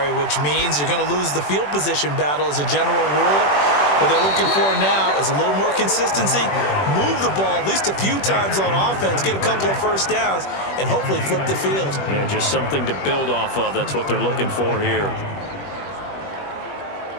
which means you're going to lose the field position battle as a general rule. What they're looking for now is a little more consistency, move the ball at least a few times on offense, get a couple of first downs, and hopefully flip the field. Yeah, just something to build off of. That's what they're looking for here.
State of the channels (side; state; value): right; late; 21 ms